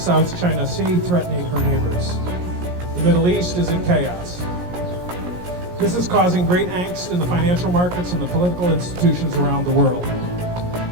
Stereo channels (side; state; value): left; late; 17 ms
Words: China Sea, threatening her neighbors. The Middle East is in chaos. This is causing great angst in the financial markets and the political institutions around the world.